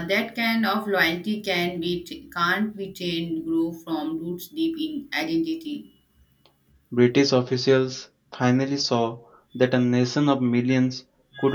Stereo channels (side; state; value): both; identical; correlation 1.00